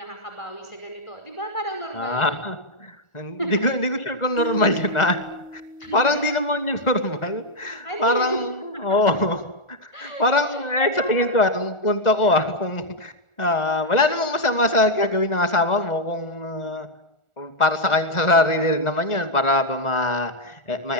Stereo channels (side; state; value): right; late; 1.4 ms